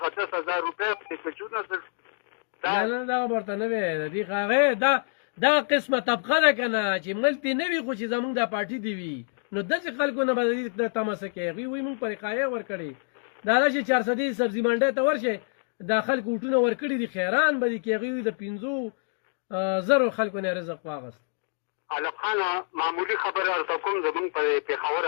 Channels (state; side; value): silent; right; digital silence